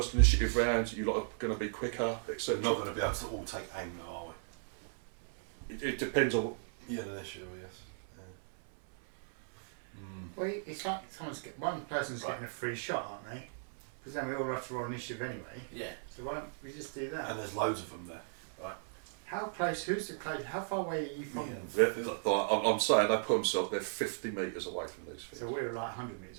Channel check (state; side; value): silent; left; 54 dB below the other